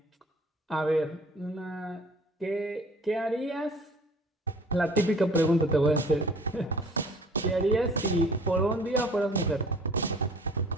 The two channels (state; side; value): normal; both; correlation 0.50